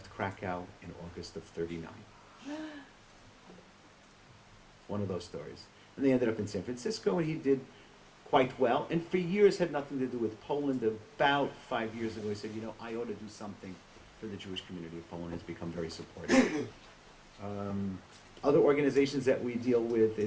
Krakow in August of 39. One of those stories. And they ended up in San Francisco, and he did quite well. And for years had nothing to do with Poland. About 5 years ago, he said, I ought to do something for the Jewish community of Poland. Has become very supportive. Other organizations that we deal with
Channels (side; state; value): both; identical; correlation 1.00